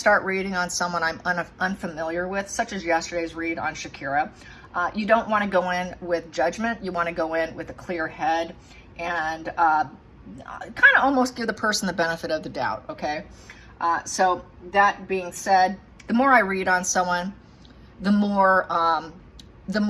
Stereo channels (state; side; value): identical; both; correlation 1.00